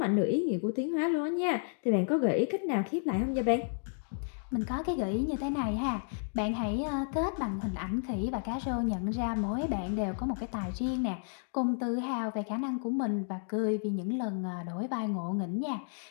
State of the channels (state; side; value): silent; right; digital silence